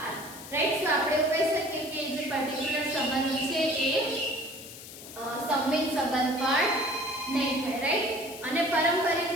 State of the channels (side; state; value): left; noise; hiss, 14 dB below the sound